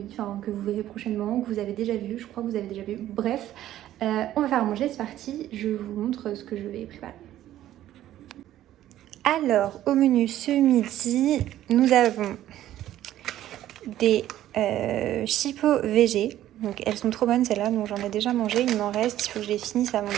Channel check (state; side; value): quieter; left; 13.0 dB